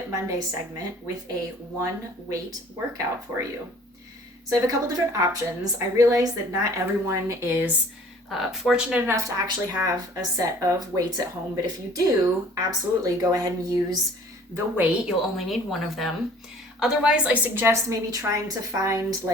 Monday segment with a one weight workout for you. So I have a couple different options. I realize that not everyone is fortunate enough to actually have a set of weights at home, but if you do, absolutely go ahead and use the weight. You'll only need one of them. Otherwise, I suggest maybe trying to find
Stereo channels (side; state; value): both; normal; correlation 0.51